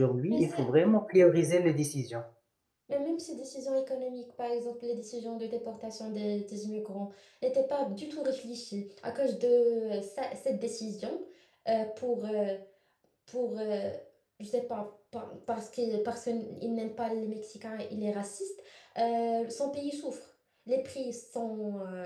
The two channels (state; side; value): identical; both; correlation 1.00